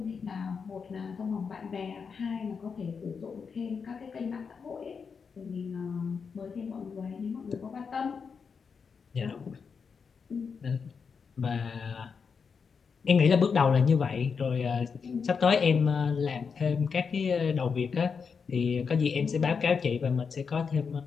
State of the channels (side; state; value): right; quieter; 5.8 dB